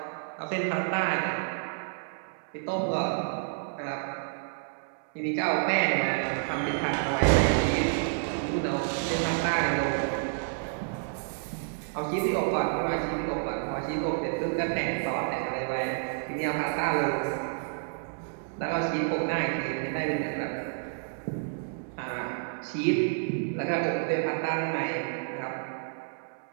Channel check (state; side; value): silent; left; digital silence